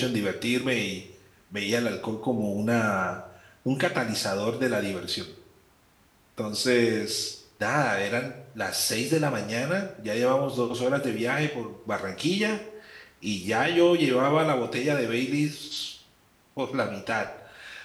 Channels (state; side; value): identical; both; correlation 1.00